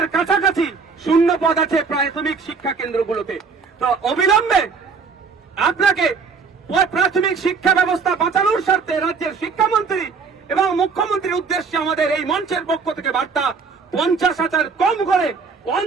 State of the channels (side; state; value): left; quieter; 5.1 dB